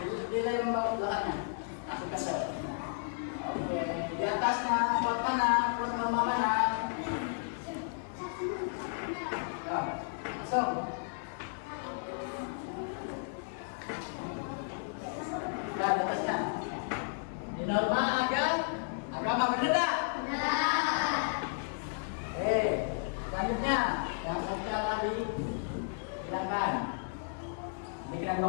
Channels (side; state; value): right; silent; digital silence